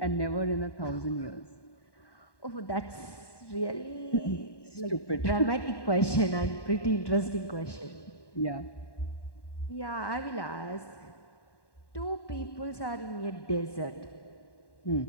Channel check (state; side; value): late; right; 1.1 ms